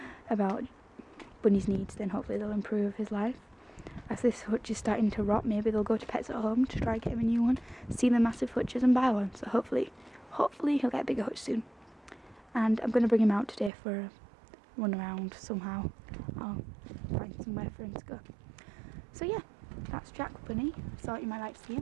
about Bunny's needs, then hopefully they'll improve his life. As this hutch is starting to rot, maybe they'll go to Pets at Home to try and get him a new one, see the massive hutches and buy one, so hopefully he'll get a bigger hutch soon. And I'm going to bring him out today for a run around somehow. I'll find somewhere for him to go. So yeah, that's Jack Bunny. Thought you might like to see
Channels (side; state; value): left; drops out; at 13.7 s